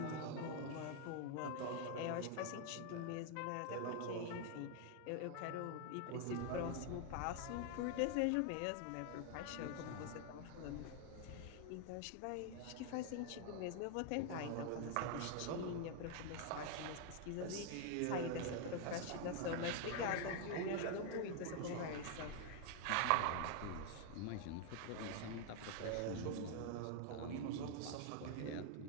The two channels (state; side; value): different; both; correlation 0.00